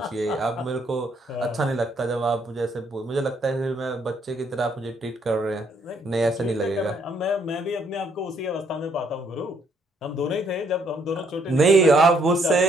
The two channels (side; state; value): both; normal; correlation 0.69